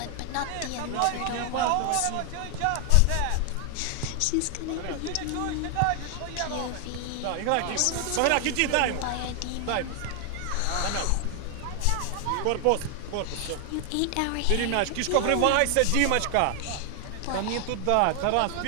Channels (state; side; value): different; both; correlation 0.00